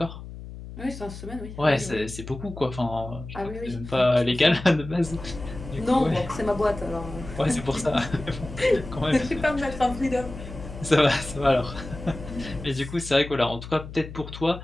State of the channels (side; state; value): left; noise; hum, 12 dB below the sound